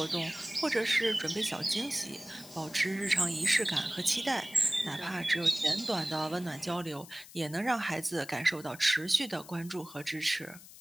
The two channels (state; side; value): noise; left; hiss, 18 dB below the sound